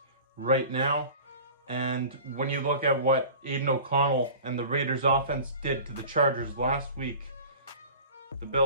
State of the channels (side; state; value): both; inverted; correlation -0.40